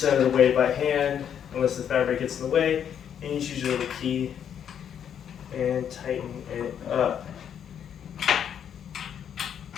of the way by hand, unless the fabric gets in the way. And you use your little key and tighten it up.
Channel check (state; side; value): quieter; right; 8.8 dB